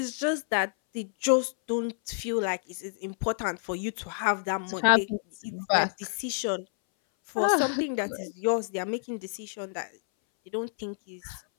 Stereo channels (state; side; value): silent; right; 59 dB below the other